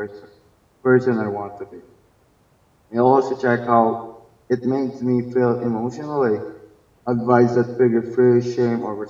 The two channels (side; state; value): both; identical; correlation 1.00